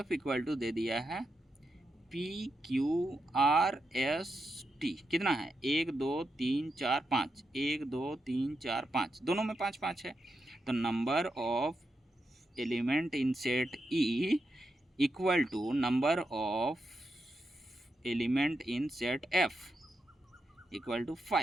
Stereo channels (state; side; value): normal; both; correlation 0.85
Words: टू दे दिया है PQRST कितना है? 1 2 3 4 5, 1 2 3 4 5, दोनों में 5 5 है। तो number of element in set E equal to number of element in set F equal to